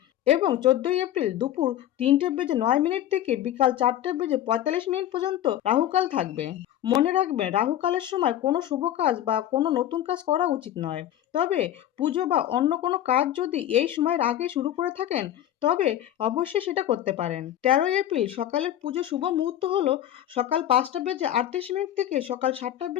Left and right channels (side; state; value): right; quieter; 11.9 dB